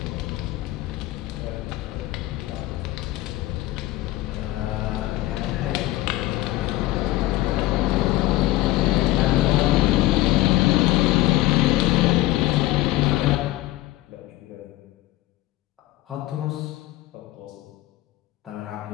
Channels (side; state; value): right; quieter; 16.9 dB